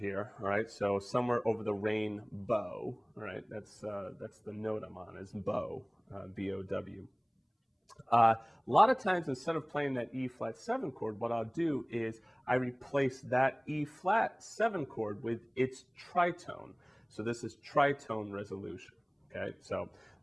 all right? So somewhere over the rain bow, all right? That's the note I'm on, is bow, B-O-W. A lot of times, instead of playing that E flat 7 chord, what I'll do is I replace that E flat 7 chord with its tritone. So this is tritone resolution, okay? So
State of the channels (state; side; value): identical; both; correlation 1.00